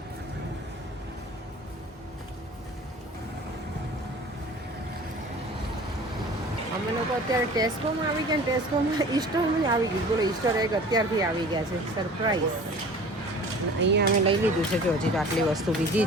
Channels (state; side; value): normal; both; correlation 0.43